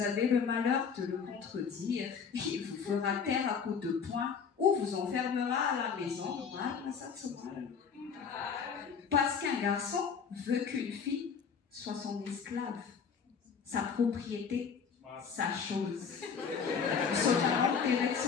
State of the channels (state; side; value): quieter; right; 6.3 dB